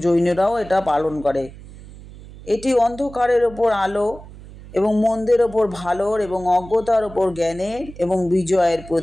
জৈনরাও এটা পালন করে। এটি অন্ধকারের ওপর আলো এবং মন্দের ওপর ভালোর এবং অজ্ঞতার ওপর জ্ঞানের এবং বিজয়ের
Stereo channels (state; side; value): noise; right; hum, 17 dB below the sound